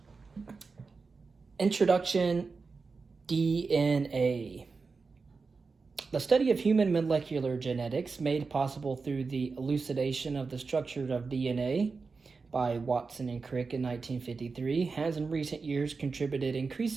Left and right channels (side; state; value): left; quieter; 4.5 dB